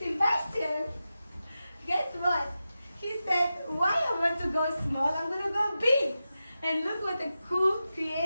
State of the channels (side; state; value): both; inverted; correlation -0.92